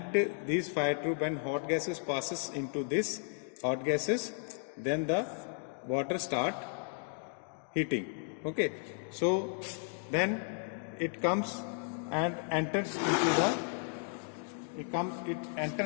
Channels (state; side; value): silent; right; 55 dB below the other